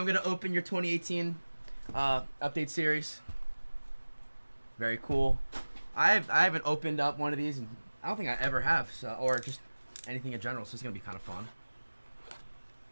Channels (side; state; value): both; inverted; correlation -1.00